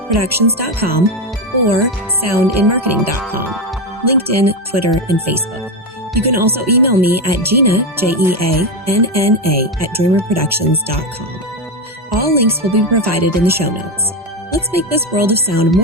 Productions.com or soundinmarketing.com. LinkedIn, Twitter, and Facebook. You can also email me at Jeanna, Jeanna, at dreamrproductions.com. All links will be provided in the show notes. Let's make this world of sound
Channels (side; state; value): both; normal; correlation 0.12